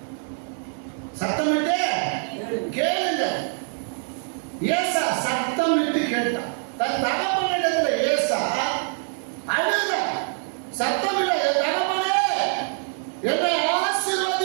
சத்தமிட்டு கேளுங்க. ஏசா சத்தமிட்டு கேட்டான். தன் தகப்பனிடத்துல ஏசா அழுத, சத்தமில்ல, என் தகப்பனே என்னை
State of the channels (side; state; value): left; silent; 56 dB below the other